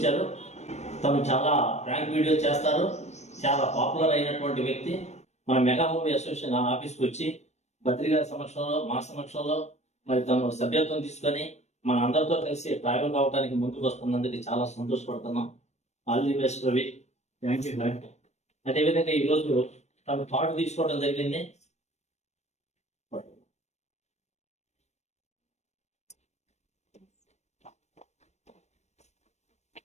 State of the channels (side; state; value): right; late; 0.32 ms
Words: తను చాలా ప్రాంక్ వీడియోస్ చేస్తారు, చాలా పాపులర్ అయినటువంటి వ్యక్తి. మన మెగా మూవీ అసోసియేషన్ ఆఫీస్కి వచ్చి బద్రి గారి సమక్షంలో, మా సమక్షంలో మరి తను సభ్యత్వం తీసుకొని మన అందరితో కలిసి ట్రావెల్ కావడానికి ముందుకు వస్తున్నందుకు చాలా సంతోషపడుతున్నాం. All the best Ravi. Thank you. అదేవిధంగా ఈరోజు తను పాటు తీసుకోవడం జరిగింది.